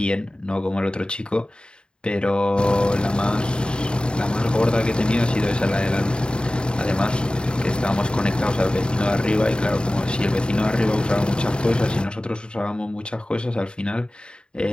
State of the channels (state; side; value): late; right; 0.051 ms